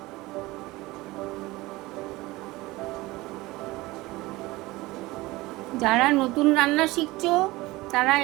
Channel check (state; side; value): quieter; left; 20.2 dB